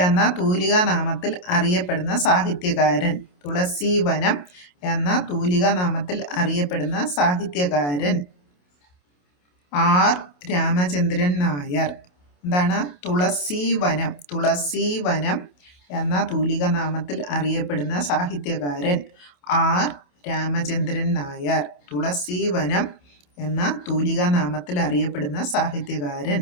എന്ന തൂലികാനാമത്തിൽ അറിയപ്പെടുന്ന സാഹിത്യകാരൻ. തുളസി വനം എന്ന തൂലികാനാമത്തിൽ അറിയപ്പെടുന്ന സാഹിത്യകാരൻ ആർ രാമചന്ദ്രൻ നായർ. എന്താണ്? തുളസി വനം എന്ന തൂലികാനാമത്തിൽ അറിയപ്പെടുന്ന സാഹിത്യകാരൻ ആർ രാമചന്ദ്രൻ നായർ. തുളസി വനം എന്ന തൂലികാനാമത്തിൽ അറിയപ്പെടുന്ന സാഹിത്യകാരൻ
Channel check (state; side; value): late; right; 28 ms